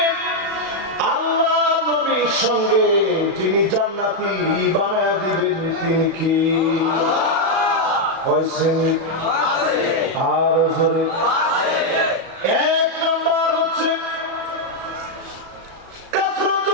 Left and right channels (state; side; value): late; left; 36 ms